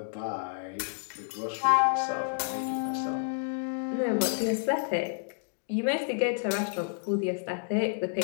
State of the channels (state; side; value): silent; right; digital silence